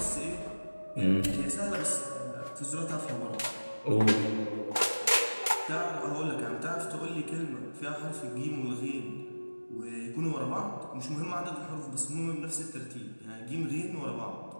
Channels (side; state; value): both; inverted; correlation -1.00